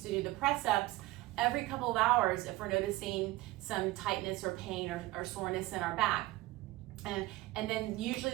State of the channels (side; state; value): left; quieter; 18.6 dB